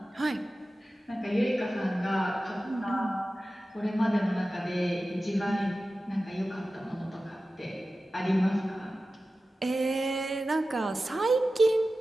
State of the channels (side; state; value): both; normal; correlation 0.94